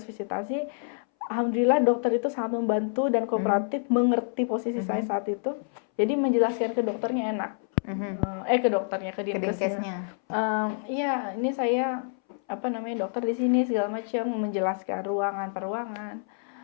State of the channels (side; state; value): right; silent; 60 dB below the other